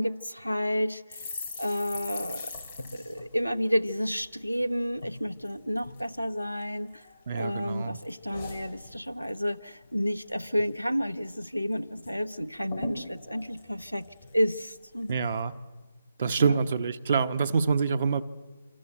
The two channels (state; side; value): inverted; both; correlation -0.89